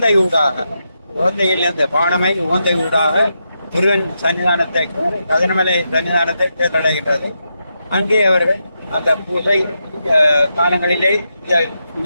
ஊடாக, உகந்தையில் இருந்த பானமை உகந்தை ஊடாக முருகன் சன்னிதானத்தை, கதிரமலை சன்னிதானத்தை தேர்ந்தடைகின்றது. அங்கே அவர்கள் அந்த பூஜை காலங்களிலே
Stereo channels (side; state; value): both; inverted; correlation -0.85